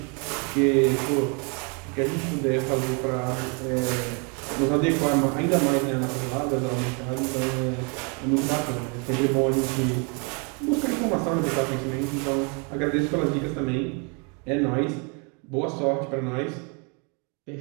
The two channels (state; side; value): quieter; left; 34.5 dB